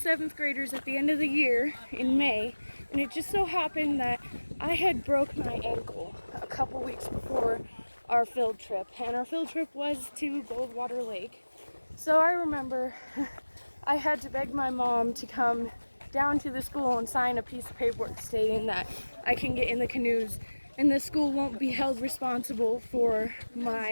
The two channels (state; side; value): inverted; both; correlation -1.00